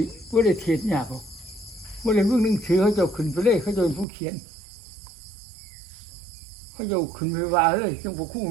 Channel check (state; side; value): drops out; left; at 4.0 s